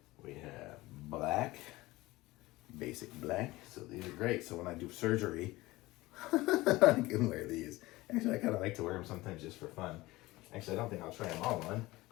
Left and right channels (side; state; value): right; quieter; 19.5 dB